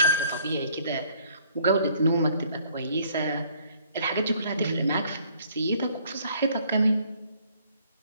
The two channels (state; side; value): inverted; both; correlation -0.61